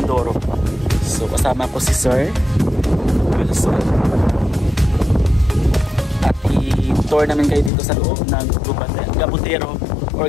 So kasama ko si Sir Wilson at i-tour namin kayo dito sa loob ng Gabutero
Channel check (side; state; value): right; drops out; at 7.7 s